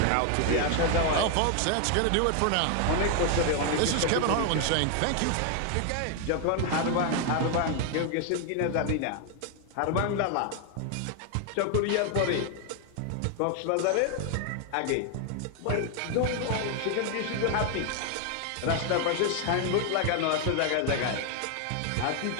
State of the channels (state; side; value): different; both; correlation 0.01